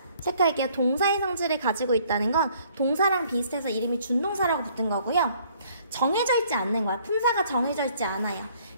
체크할게요. 동사의 성질을 가지고 있다는 건 동사랑 비슷해서 이름이 준동사라고 붙은 거고요. 정해져 있지 않는 거야. 품사가 정해져 있지 않아요.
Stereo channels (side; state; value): both; inverted; correlation -0.61